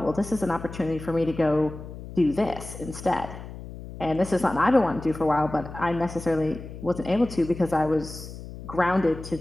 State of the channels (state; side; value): noise; left; hum, 12 dB below the sound